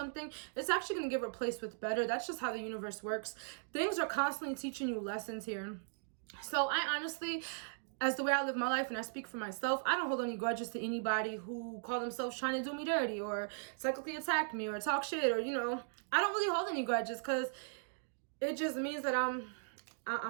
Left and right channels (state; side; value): silent; left; digital silence